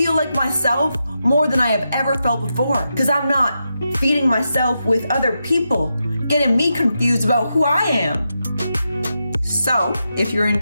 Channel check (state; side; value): inverted; both; correlation -0.87